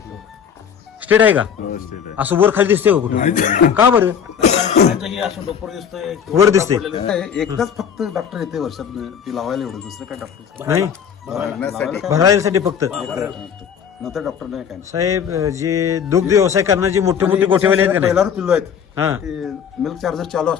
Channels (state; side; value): quieter; right; 7.8 dB